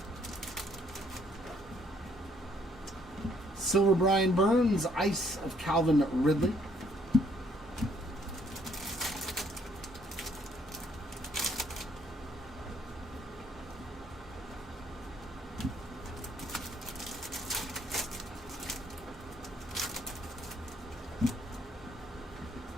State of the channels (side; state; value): both; normal; correlation 0.66